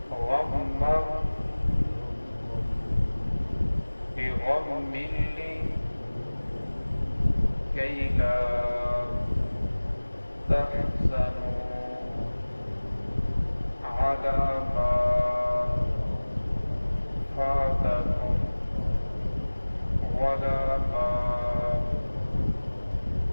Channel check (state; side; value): inverted; both; correlation -1.00